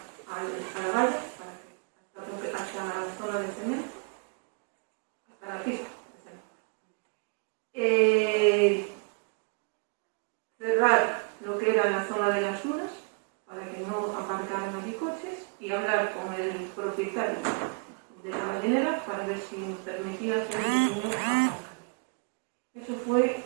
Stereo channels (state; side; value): quieter; left; 36.3 dB